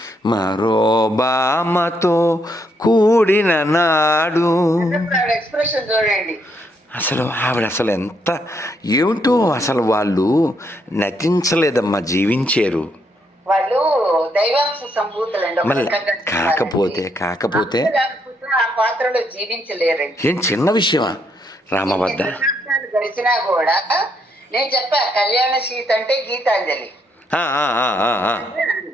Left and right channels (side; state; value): both; normal; correlation 0.75